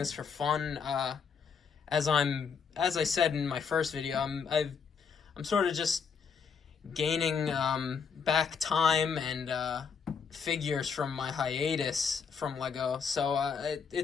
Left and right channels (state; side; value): quieter; right; 6.1 dB